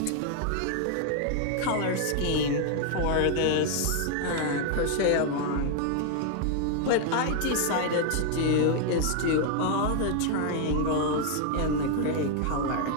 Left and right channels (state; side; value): different; both; correlation 0.00